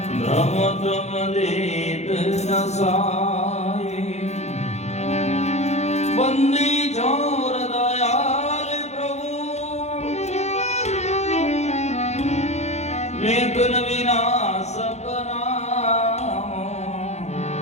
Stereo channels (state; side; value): late; right; 0.32 ms